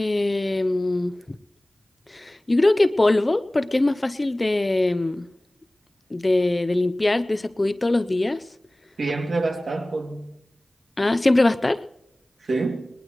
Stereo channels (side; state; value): both; normal; correlation 0.98